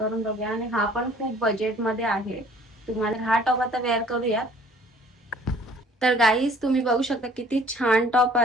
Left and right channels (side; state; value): both; normal; correlation 0.54